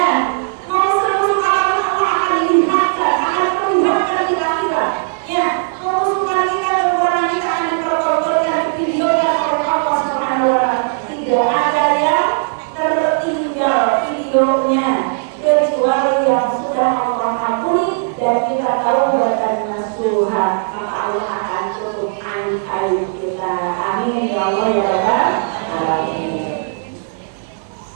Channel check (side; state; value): left; silent; digital silence